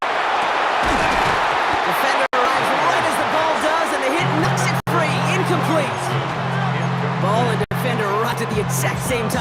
Defender arrives right as the ball does, and the hit knocks it free. Incomplete. Ball and defender right at the exact same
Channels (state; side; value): identical; both; correlation 1.00